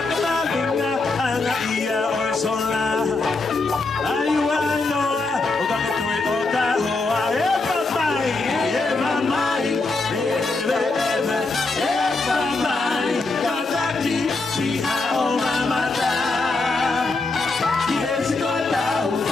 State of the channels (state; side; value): quieter; right; 3.5 dB